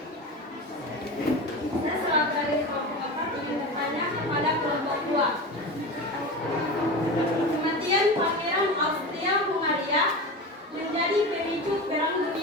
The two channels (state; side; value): normal; both; correlation 0.27